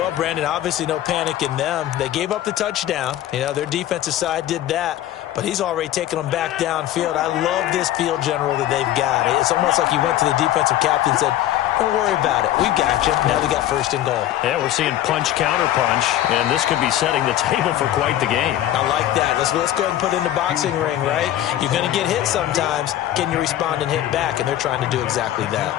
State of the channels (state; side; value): quieter; right; 12.9 dB